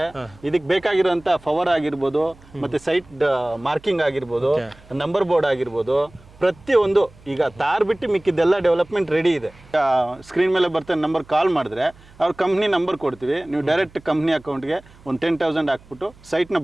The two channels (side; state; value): right; noise; hum, 25 dB below the sound